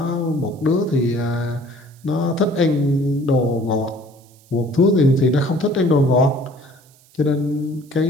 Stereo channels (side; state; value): right; noise; hiss, 29 dB below the sound